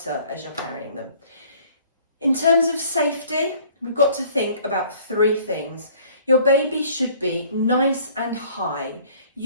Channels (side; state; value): both; inverted; correlation -0.55